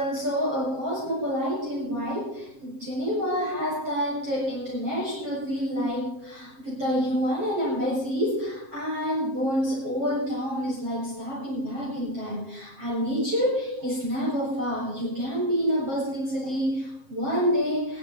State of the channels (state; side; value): late; left; 7.5 ms